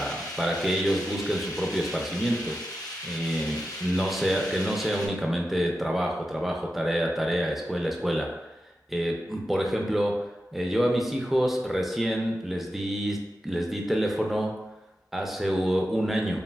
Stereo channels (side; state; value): both; normal; correlation 0.90